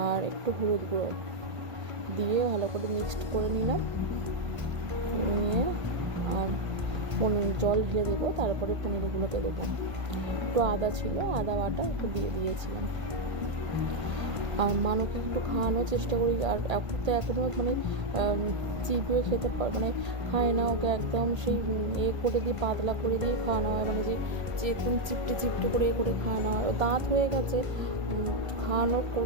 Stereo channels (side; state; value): left; late; 1.5 ms